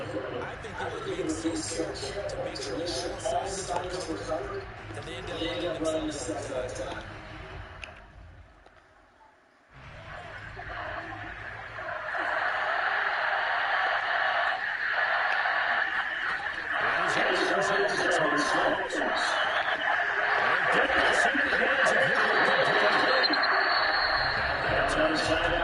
I think they were being so careful to make sure all assignments were covered, and they ended up letting themselves down that time.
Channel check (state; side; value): identical; both; correlation 1.00